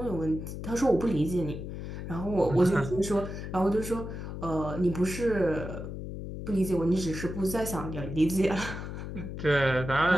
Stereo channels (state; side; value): noise; left; hum, 7 dB below the sound